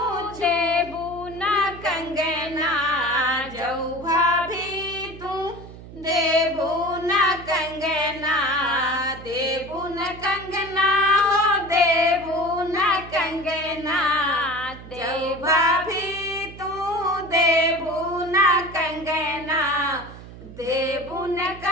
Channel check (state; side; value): noise; right; hum, 16 dB below the sound